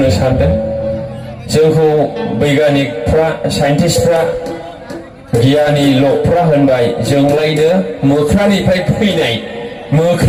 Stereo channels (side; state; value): both; identical; correlation 1.00